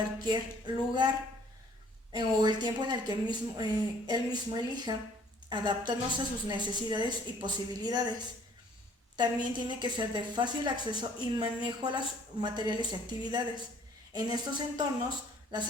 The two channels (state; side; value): normal; both; correlation 0.58